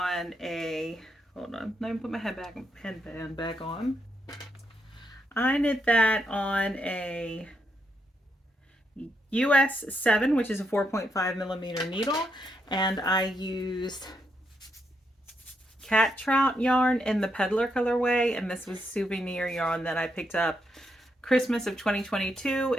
a, hold on, let me put my headband back on. I knit that on a US 7, which is a 4.5 millimeter needle, and I used cat trout yarn in the peddler colorway, and this was souvenir yarn that I picked up Christmas of 2022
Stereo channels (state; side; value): normal; both; correlation 0.80